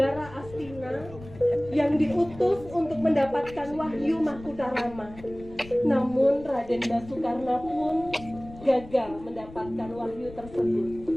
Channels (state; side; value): noise; left; rumble, 18 dB below the sound